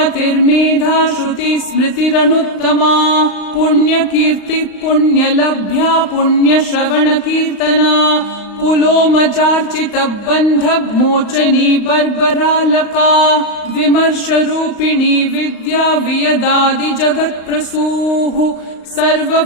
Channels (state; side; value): late; right; 35 ms